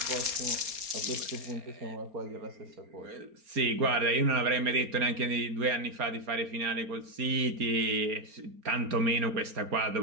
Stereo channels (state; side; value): late; left; 4.3 ms